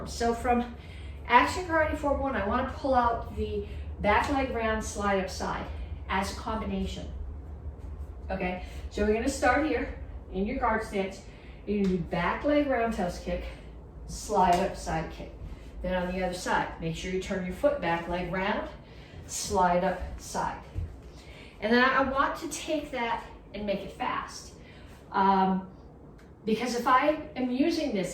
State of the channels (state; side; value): identical; both; correlation 1.00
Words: So from action karate form 1, I want to pull out the back leg round slide up side as a combination. Okay, so we're going to start here in your guard stance. You're going to do back leg roundhouse kick, slide up side kick. Then on the other side, make sure you turn your foot back, leg round, slide up side. And then I want to take that and make it fast. Because if I am using